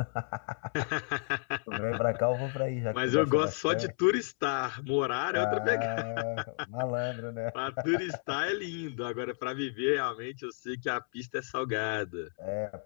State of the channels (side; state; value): right; silent; 56 dB below the other